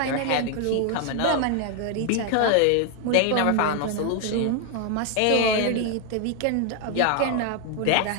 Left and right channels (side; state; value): both; different; correlation 0.00